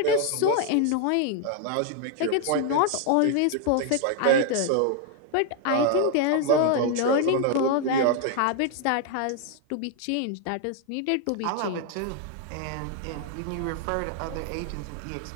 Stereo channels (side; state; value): both; different; correlation 0.00